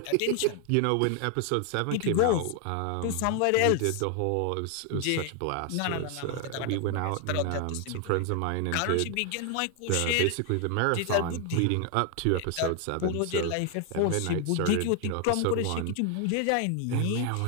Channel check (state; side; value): different; both; correlation 0.00